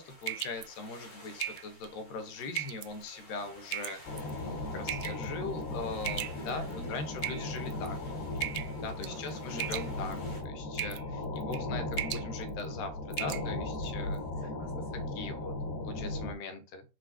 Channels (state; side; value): late; right; 13 ms